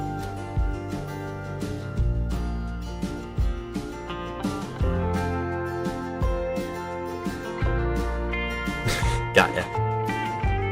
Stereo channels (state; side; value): identical; both; correlation 1.00